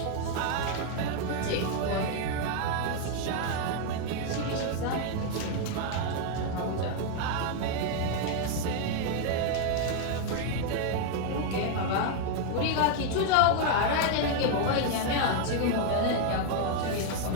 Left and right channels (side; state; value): both; different; correlation 0.00